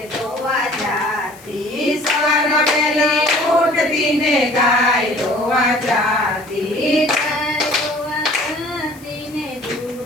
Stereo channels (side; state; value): left; noise; hiss, 23 dB below the sound